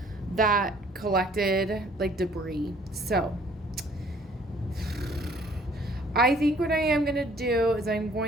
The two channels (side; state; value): both; normal; correlation 0.58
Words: that collected like debris. So I think what I am going to do is I'm